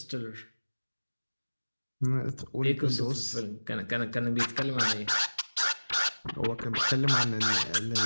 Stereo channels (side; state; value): both; inverted; correlation -1.00